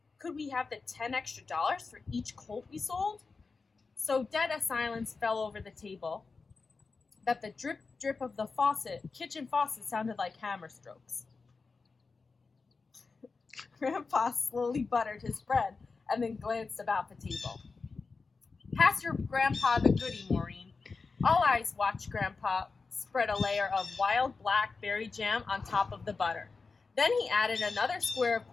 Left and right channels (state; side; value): quieter; right; 4.4 dB